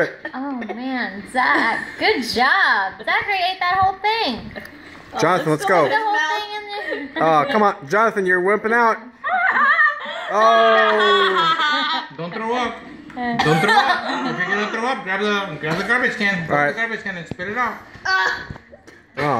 Oh man, Zach, good job. Zachary ate that whole thing. Jonathan, let's go. The whole thing in there. Oh, come on. Jonathan, you're wimping out. Oh. Don't throw up. Don't throw up. If you're gonna throw up, grab the garbage can. Grab Alright. the garbage can and spit it out.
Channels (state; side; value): identical; both; correlation 1.00